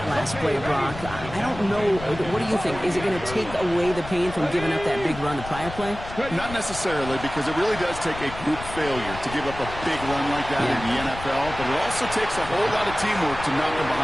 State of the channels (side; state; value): left; noise; rumble, 12 dB below the sound